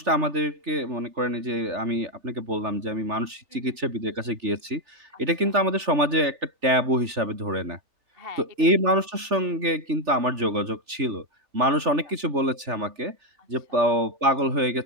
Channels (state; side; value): late; left; 3.4 ms